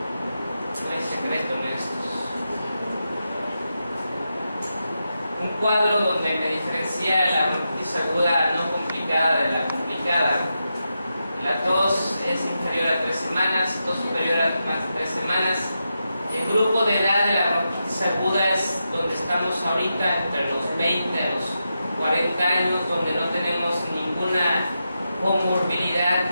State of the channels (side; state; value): both; inverted; correlation -0.88